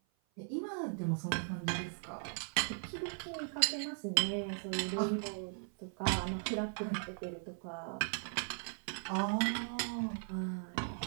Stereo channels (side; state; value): left; silent; 52 dB below the other